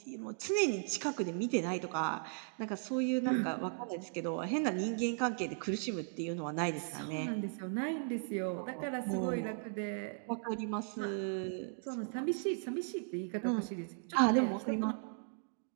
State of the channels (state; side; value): silent; left; digital silence